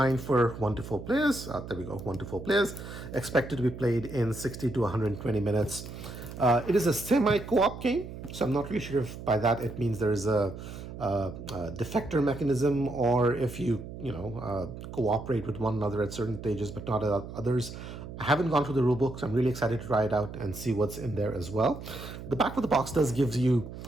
for 1 to 4 players. There we go, 1 to 4 players. Expected to be played in 60 to 120 minutes. It is a semi-co-op game, so I'm not really sure if by that it means there is a defector mechanism, or if you cooperate with one another at certain stages but not at others. I haven't gone through the rulebook, so I'm really excited to try it out and see what's in there as well. The back of the box does give you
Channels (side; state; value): right; noise; hum, 11 dB below the sound